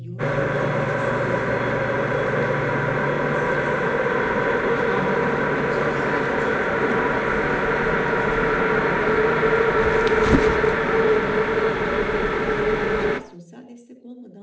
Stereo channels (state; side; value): identical; both; correlation 1.00